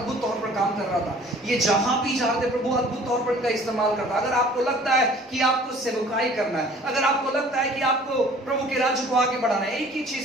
तौर पर काम कर रहा था। ये जहां भी जाते प्रभु अद्भुत तौर पर इनका इस्तेमाल करता। अगर आपको लगता है कि आपको सेवकाई करना है, अगर आपको लगता है कि आपको प्रभु के राज्य को आगे बढ़ाना है, एक ही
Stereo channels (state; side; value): normal; both; correlation 0.51